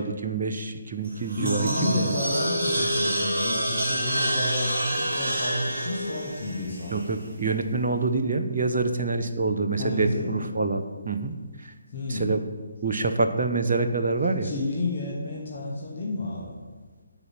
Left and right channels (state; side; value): inverted; both; correlation -0.69